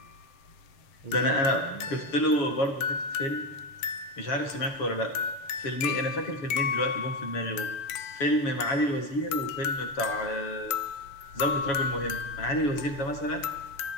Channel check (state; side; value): late; right; 7.5 ms